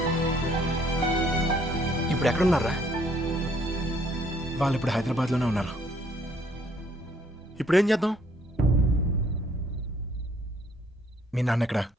ఇప్పుడు ఎక్కడున్నారా? వాళ్ళు ఇప్పుడు హైదరాబాద్ లోనే ఉన్నారు. ఇప్పుడు ఏం చేద్దాం? మీ నాన్న ఎక్కడ?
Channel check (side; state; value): both; normal; correlation 0.64